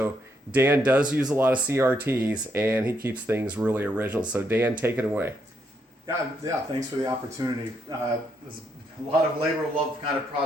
Dan does use a lot of CRTs, and he keeps things really original. So Dan, take it away. Yeah. Thanks for the opportunity. There's a lot of labor of love kind of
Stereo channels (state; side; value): normal; both; correlation 0.77